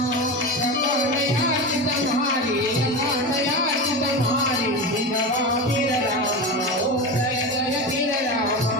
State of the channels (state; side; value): normal; both; correlation 0.23